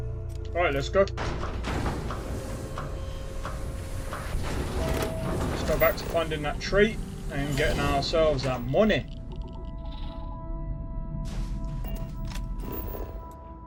Alright, let's go. Let's go back to finding that trait and getting ourselves that money.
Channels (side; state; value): both; identical; correlation 1.00